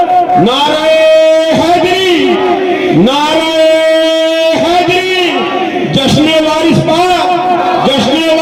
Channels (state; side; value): identical; both; correlation 1.00